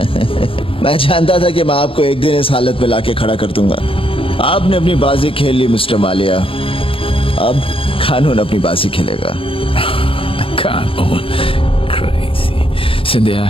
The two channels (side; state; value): right; late; 0.26 ms